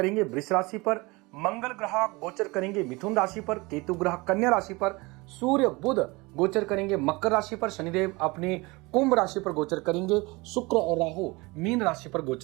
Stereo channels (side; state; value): left; quieter; 24.3 dB